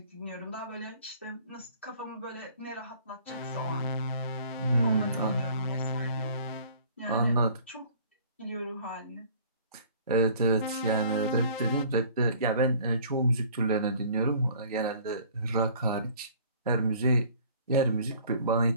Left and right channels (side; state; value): both; inverted; correlation -0.52